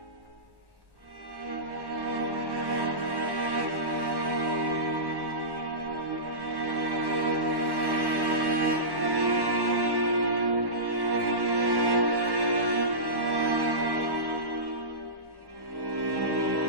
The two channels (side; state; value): left; late; 1.1 ms